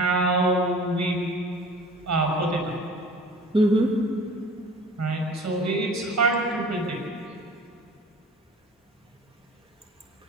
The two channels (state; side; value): normal; both; correlation 0.44